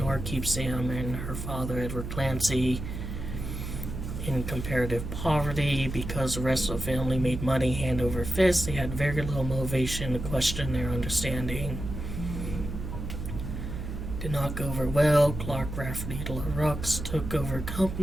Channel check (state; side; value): noise; right; hum, 6 dB below the sound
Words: order to keep Sam and her father, Edward Clancy, in comparative poverty. Because the rest of the family made money hand over fist, they had very little motivation to question their understanding. Did not go over well. Clark Rafferty LaRux took over